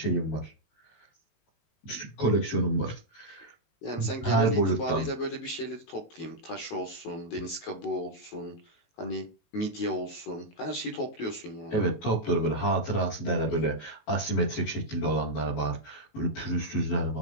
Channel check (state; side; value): late; right; 19 ms